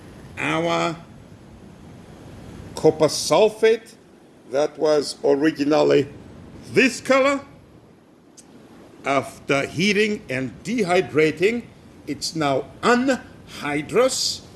our copper sulfate that was originally this color, after heating and dehydrating, it's now anhydrous,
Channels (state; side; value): identical; both; correlation 1.00